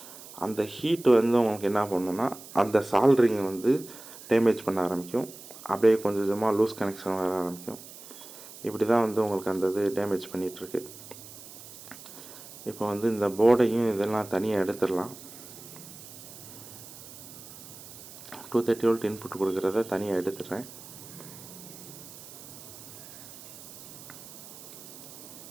அந்த ஹீட் வந்து உங்களுக்கு என்ன பண்ணுன்னா அந்த சால்ட்ரிங்கை வந்து டேமேஜ் பண்ண ஆரம்பிக்கும். அப்படியே கொஞ்சம் கொஞ்சமாக லூஸ் கனெக்ஷன் வர ஆரம்பிக்கும். இப்படி தான் வந்து உங்களுக்கு அந்த இது டேமேஜ் பண்ணிகிட்ருக்கு. இப்போ வந்து இந்த போர்டையும் இதெல்லாம் தனியாக எடுத்துடலாம். 230 வோல்ட் இன்புட் கொடுக்குறத தனியாக எடுத்துடுறேன்.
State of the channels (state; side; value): noise; right; hiss, 16 dB below the sound